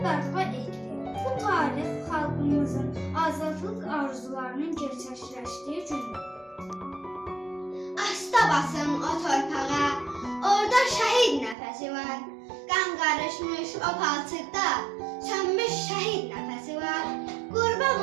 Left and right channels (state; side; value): drops out; left; at 11.6 s